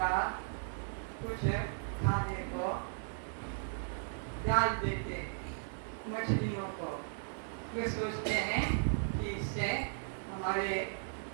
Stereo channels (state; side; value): silent; left; digital silence